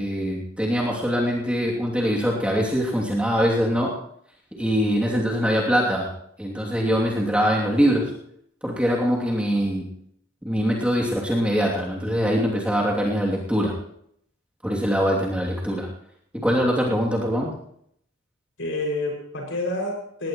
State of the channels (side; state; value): both; normal; correlation 0.77